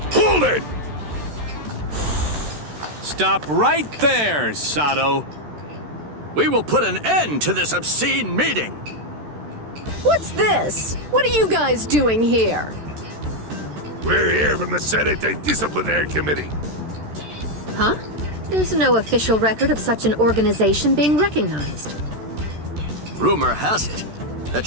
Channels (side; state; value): left; late; 13 ms